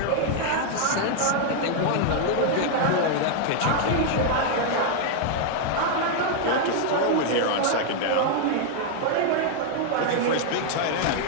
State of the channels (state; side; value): different; both; correlation 0.00